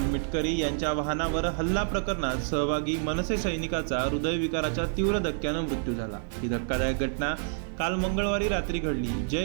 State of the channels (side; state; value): left; silent; digital silence